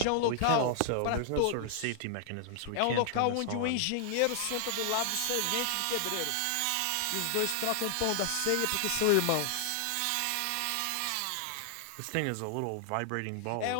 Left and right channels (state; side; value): different; both; correlation 0.00